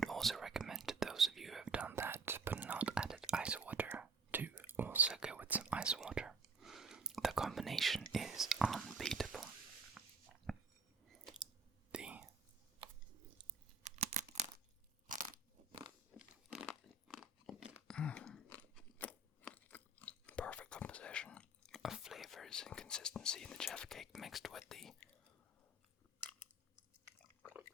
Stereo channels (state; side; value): quieter; left; 3.4 dB